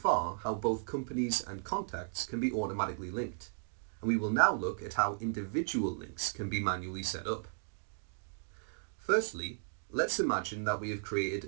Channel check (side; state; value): left; silent; digital silence